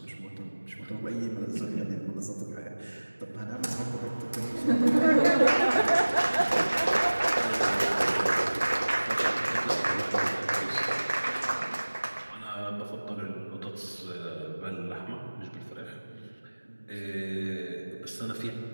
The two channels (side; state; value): both; inverted; correlation -1.00